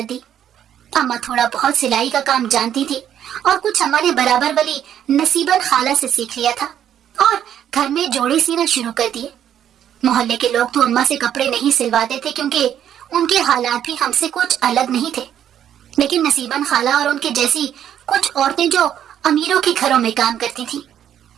दी। अम्मा थोड़ा बहुत सिलाई का काम जानती थी, और कुछ अम्मा ने बराबर वाली नसीबन खाला से सीख लिया था और घर में जोड़े सीना शुरू कर दिए। मोहल्ले के लोग तो अम्मा से कपड़े नहीं सिलवाते थे, क्योंकि उनके हालात भी हमसे कुछ अलग नहीं थे। लेकिन नसीबन खाला और उनके जैसी कुछ औरतें जो अमीरों के घरों में काम करती थीं,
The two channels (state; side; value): quieter; left; 10.0 dB